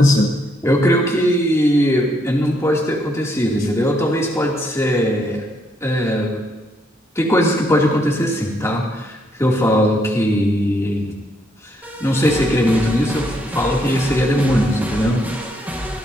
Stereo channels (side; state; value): both; normal; correlation 0.74